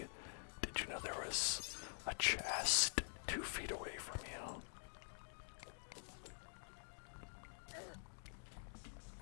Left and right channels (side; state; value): right; silent; digital silence